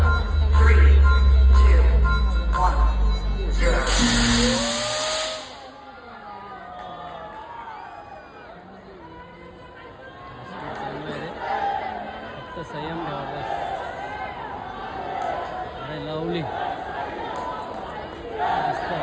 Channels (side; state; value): both; identical; correlation 1.00